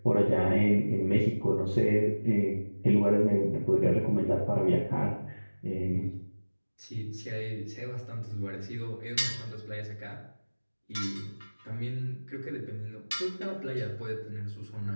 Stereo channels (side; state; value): both; inverted; correlation -1.00